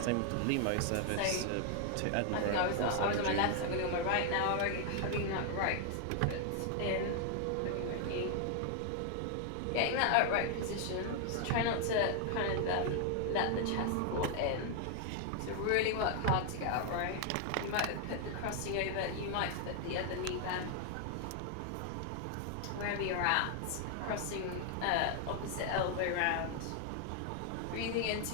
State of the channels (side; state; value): both; different; correlation 0.00